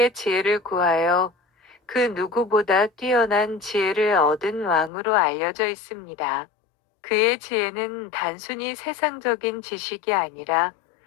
지혜를 구하여 그 누구보다 뛰어난 지혜를 얻은 왕으로 알려져 있습니다. 그의 지혜는 단순히 세상적인 지식이 아니라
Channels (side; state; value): right; drops out; at 4.9 s